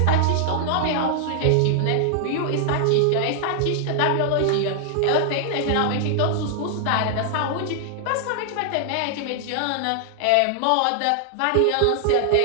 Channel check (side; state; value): both; different; correlation 0.00